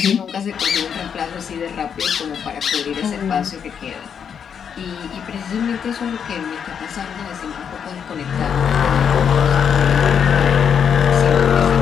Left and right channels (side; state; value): right; quieter; 7.5 dB